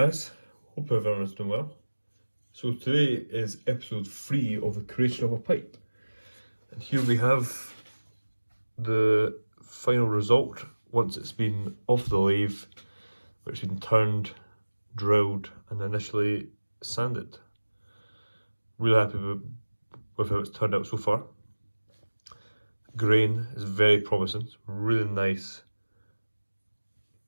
Hope everyone's doing well. So today is episode 3 of the creation of a pipe. And here we have the final result once it's been off the lathe, which has been turned, drilled and initially sanded. Really happy with how it's turned out so far. Grain is very promising. It's really nice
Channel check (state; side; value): inverted; both; correlation -1.00